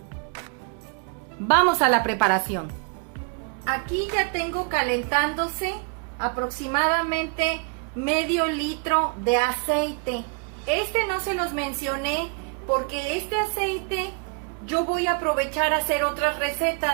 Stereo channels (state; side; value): quieter; left; 36.5 dB